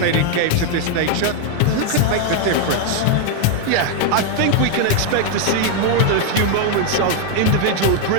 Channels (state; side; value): different; both; correlation 0.01